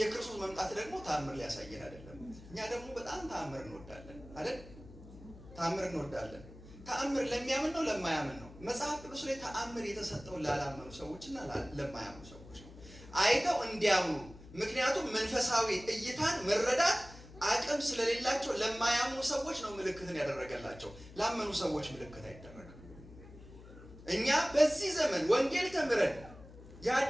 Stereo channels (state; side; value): noise; left; hum, 18 dB below the sound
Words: የክርስቶስ መምጣት ደግሞ ተአምር ሊያሳየን አይደለም። እኛ ደግሞ በጣም ተአምር እንወዳለን አይደል? ተአምር እንወዳለን። ተአምር ለሚያምን ነው ለማያምን ነው? መጽሐፍ ቅዱስ ላይ ተአምር የተሰጠው ላላመኑ ሰዎችና ለማያምኑ ሰዎች ነው፣ አይተው እንዲያምኑ። ምክንያቱም መንፈሳዊ እይታን መረዳት አቅም ስለሌላቸው ለማያምኑ ሰዎች ነው ምልክትን ያደረገላቸው። ላመኑ ሰዎች ምልክት አይደረግም። እኛ በዚህ ዘመን ወንጌል ተምረን